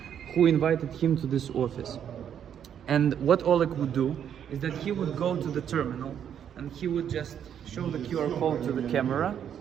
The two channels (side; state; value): left; quieter; 9.0 dB